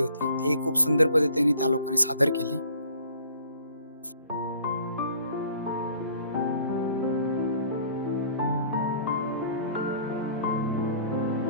ती खूप सुंदर पद्धतीने त्या लोकांनी सादर केली.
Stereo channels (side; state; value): both; inverted; correlation -0.53